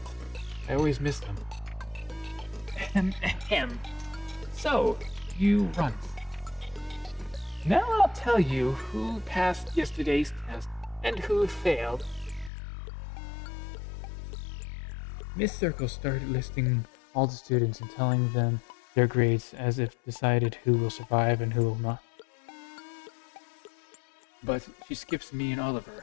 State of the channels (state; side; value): drops out; right; at 12.5 s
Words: I always miss them. Ahem. So, you run. Now I'll tell you who passed yesterday's test and who failed. Miss Circle started listing all the students and telling them their grades as if decided who will survive and who will not. But she skips me and